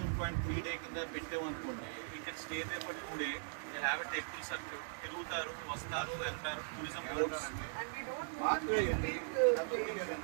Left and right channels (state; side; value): silent; left; digital silence